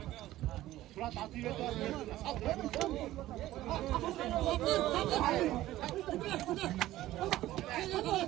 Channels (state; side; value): quieter; left; 15.2 dB